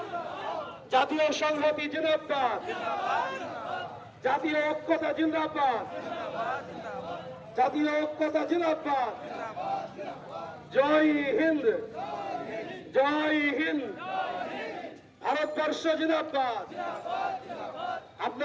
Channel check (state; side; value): identical; both; correlation 1.00